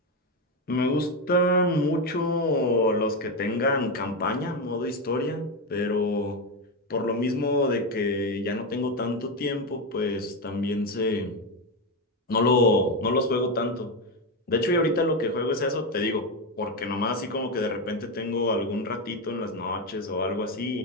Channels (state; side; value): normal; both; correlation 0.11